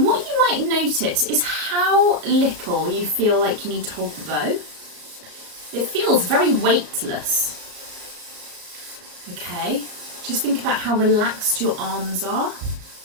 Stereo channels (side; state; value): left; late; 34 ms